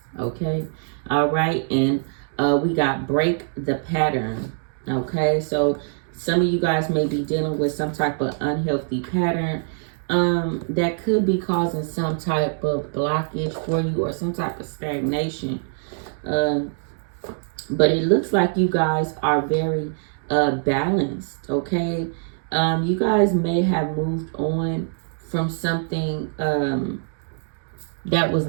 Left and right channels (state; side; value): silent; left; digital silence